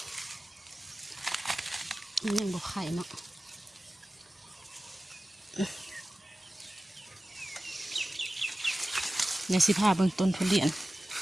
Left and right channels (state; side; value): normal; both; correlation 0.96